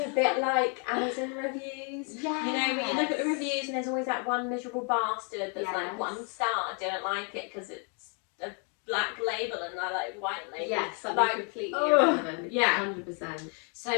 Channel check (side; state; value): right; quieter; 38.6 dB